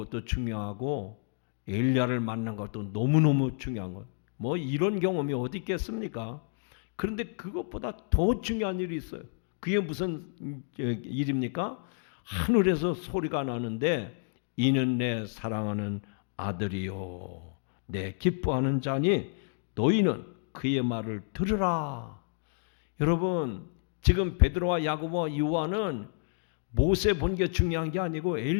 중요하고 엘리야를 만난 것도 너무너무 중요한 것. 뭐 이런 경험이 어디 있겠습니까? 그런데 그것보다 더 중요한 일이 있어요. 그게 무슨 일입니까? 하늘에서 소리가 나는데 이는 내 사랑하는 아들이요 내 기뻐하는 자니 너희는 그의 말을 들으라. 여러분, 지금 베드로와 야고보와 요한은 모세 본 게 중요한 게 아니고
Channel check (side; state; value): right; silent; digital silence